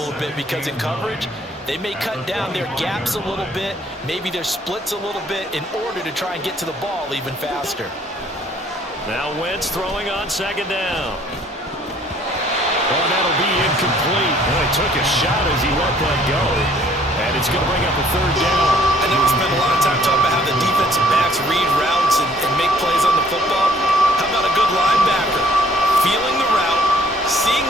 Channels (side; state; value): both; normal; correlation 0.59